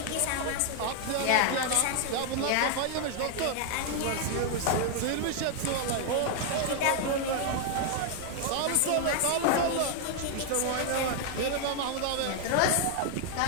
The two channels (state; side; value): different; both; correlation 0.00